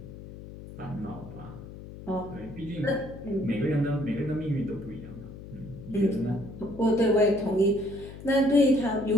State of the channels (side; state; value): left; noise; hum, 14 dB below the sound